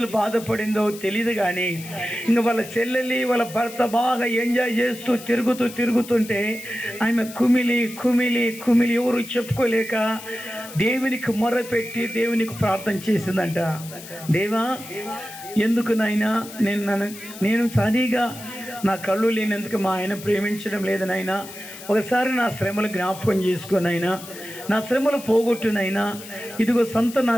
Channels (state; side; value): noise; left; hiss, 15 dB below the sound